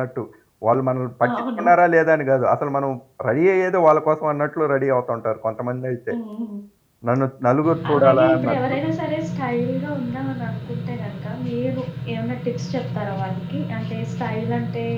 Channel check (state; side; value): identical; both; correlation 1.00